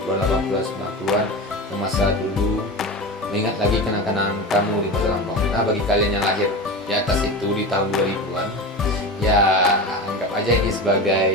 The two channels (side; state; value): both; normal; correlation 0.27